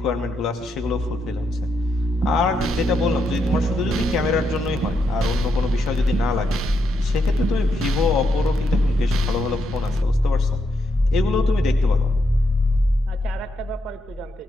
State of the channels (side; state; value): both; normal; correlation 0.80